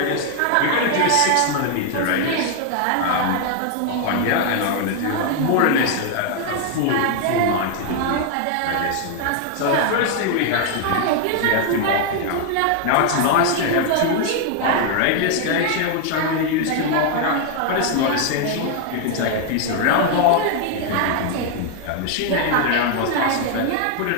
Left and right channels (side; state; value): both; different; correlation 0.00